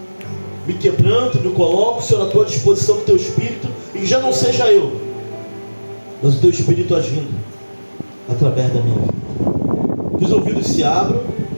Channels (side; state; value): both; inverted; correlation -1.00